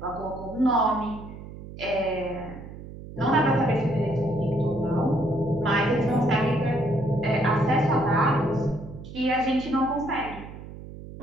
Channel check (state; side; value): noise; right; hum, 14 dB below the sound